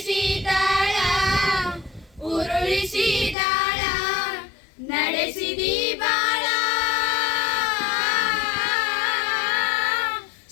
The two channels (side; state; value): right; drops out; at 3.4 s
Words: ಉರುಳಿಸಿದಾಳ ನಡೆಸಿದಿ ಬಾಳ.